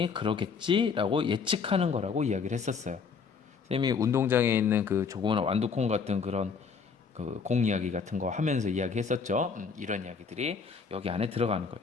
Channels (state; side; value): quieter; right; 5.6 dB